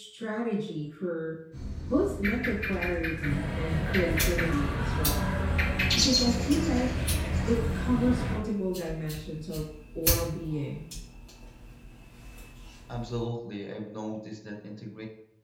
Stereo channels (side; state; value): both; identical; correlation 1.00